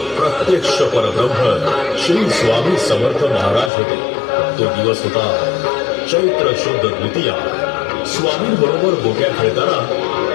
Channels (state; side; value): drops out; right; at 3.7 s